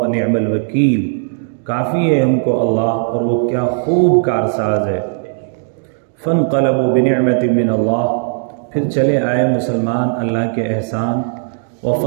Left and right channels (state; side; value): silent; left; 64 dB below the other